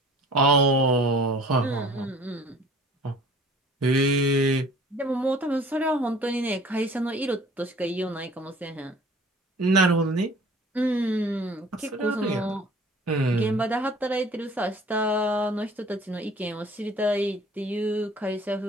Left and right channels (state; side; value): normal; both; correlation 0.49